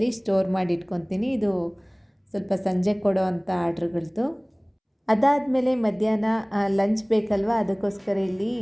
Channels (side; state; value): both; identical; correlation 1.00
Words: ಸ್ಟೋರ್ ಮಾಡಿ ಇಟ್ಕೊತೀನಿ. ಇದು ಸ್ವಲ್ಪ ಸಂಜೆ ಕೊಡೋ ಅಂಥ ಆರ್ಡ್ರ್ಗಳದ್ದು. ಅದಾದಮೇಲೆ ಮಧ್ಯಾಹ್ನ ಲಂಚ್ ಬೇಕಲ್ವ, ಅದಕ್ಕೋಸ್ಕರ ಇಲ್ಲಿ